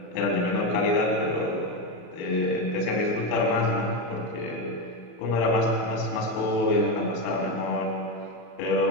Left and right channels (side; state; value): right; late; 33 ms